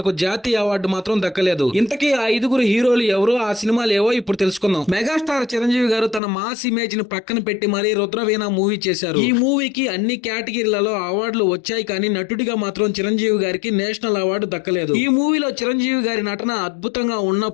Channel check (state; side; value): drops out; right; at 6.2 s